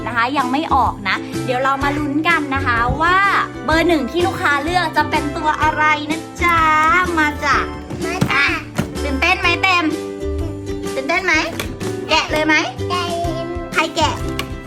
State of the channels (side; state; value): both; identical; correlation 1.00